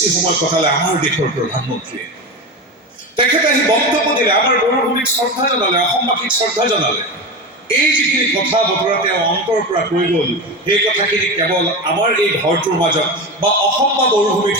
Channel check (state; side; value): normal; both; correlation 0.22